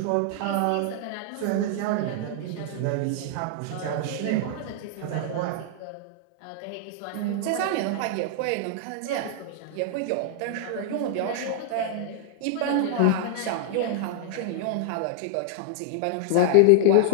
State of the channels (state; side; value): different; both; correlation -0.01